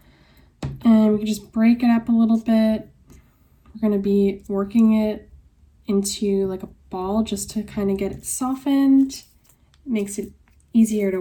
and we can just break it up a little bit. We're going to be working it into like a ball just to kind of get it softened. It makes it easier to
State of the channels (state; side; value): identical; both; correlation 1.00